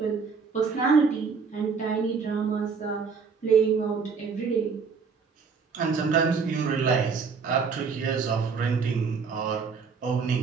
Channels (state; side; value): quieter; left; 5.4 dB